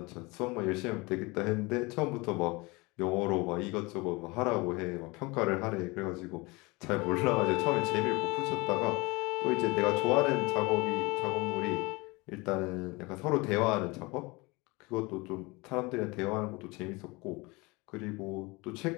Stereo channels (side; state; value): right; quieter; 25.0 dB